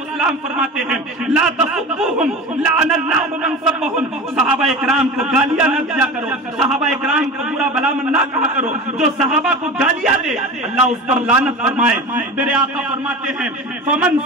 فرماتے ہیں لا تسبوہم لعن اللہ من سبہم، صحابہ اکرام کو گالیاں نہ دیا کرو، صحابہ اکرام کو برا بھلا نہ کہا کرو، جو صحابہ کو گالیاں دے اللہ اس پر لعنت فرمائے۔ میرے آقا فرماتے ہیں فمن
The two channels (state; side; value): normal; both; correlation 0.31